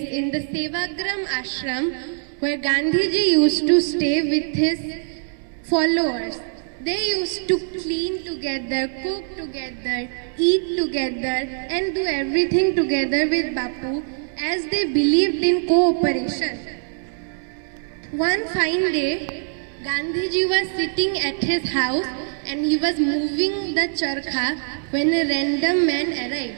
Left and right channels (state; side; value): silent; left; digital silence